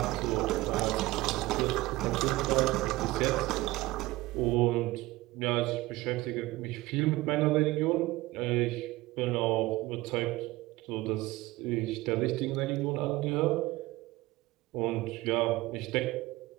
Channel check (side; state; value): left; quieter; 19.2 dB